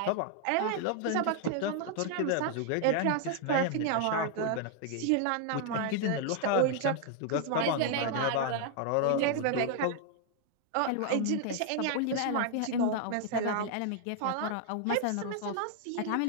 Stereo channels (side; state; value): both; different; correlation 0.00